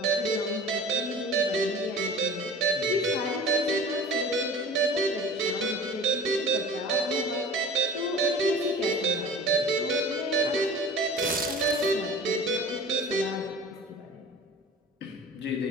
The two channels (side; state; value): both; normal; correlation 0.41